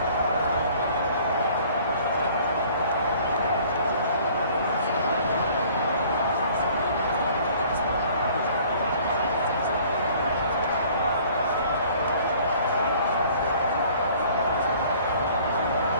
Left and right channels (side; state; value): both; inverted; correlation -0.54